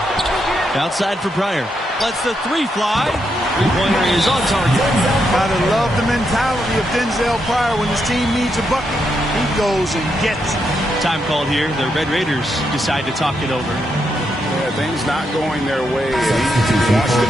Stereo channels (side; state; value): both; normal; correlation 0.81